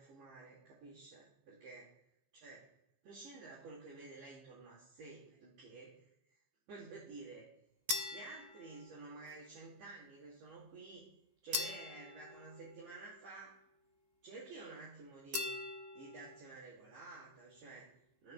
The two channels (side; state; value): left; late; 15 ms